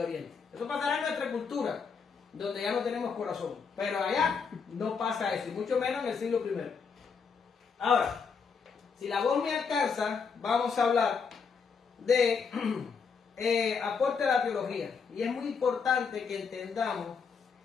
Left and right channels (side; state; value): right; quieter; 5.7 dB